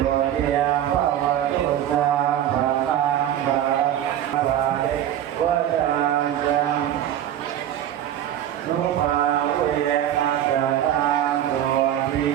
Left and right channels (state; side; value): quieter; left; 11.2 dB